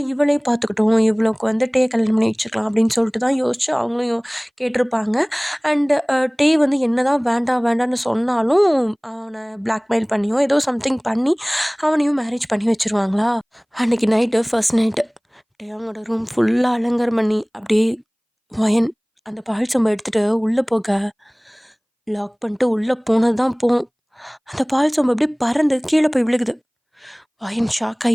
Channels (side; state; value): both; identical; correlation 1.00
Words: இவளே பார்த்துக்கிட்டோம், இவளுக்கு வந்து டே கல்யாணம் பண்ணி வச்சுக்கலாம் அப்படின்னு சொல்லிட்டு தான் யோசிச்சு அவங்களும் கேட்டிருப்பாங்க. அண்டு டே வந்து என்ன தான் வேண்டாம் வேண்டான்னு சொன்னாலும் அவனை பிளாக்மெயில் பண்ணியோ ஏதோ சம்திங் பண்ணி அவனையும் மேரேஜ் பண்ணி வச்சுருவாங்களா. அன்றைக்கி நைட்டு ஃபர்ஸ்ட் நைட்டு டே அவங்களோட ரூம் ஃபுல்லாக அலங்காரம் பண்ணி அப்படியே வயன் அந்த பால் சொம்பை எடுத்துகிட்டு உள்ளே போக லாக் பண்ணிட்டு உள்ளே போனது தான் போகும். அந்த பால் சொம்பை அப்படியே பறந்து கீழே போய் விழுகுது. வயன் ஷாக்